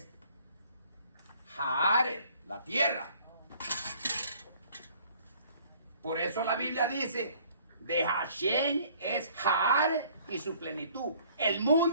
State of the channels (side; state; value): both; inverted; correlation -0.57